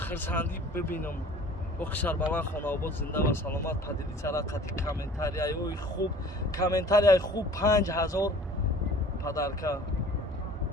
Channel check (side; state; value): both; normal; correlation 0.48